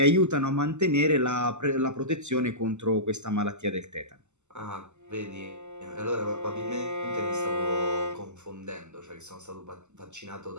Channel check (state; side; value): late; left; 0.83 ms